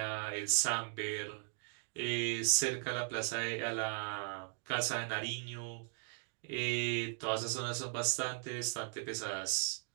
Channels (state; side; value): silent; left; 52 dB below the other